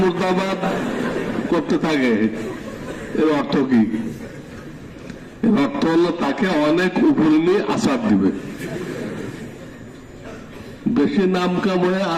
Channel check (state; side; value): identical; both; correlation 1.00